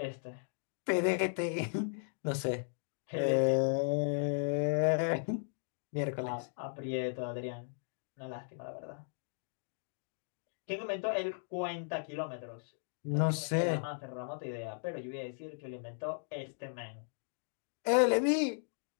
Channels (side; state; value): right; silent; digital silence